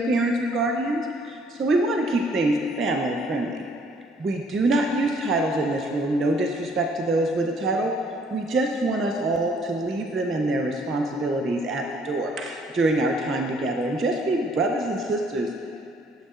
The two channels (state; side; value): normal; both; correlation 0.62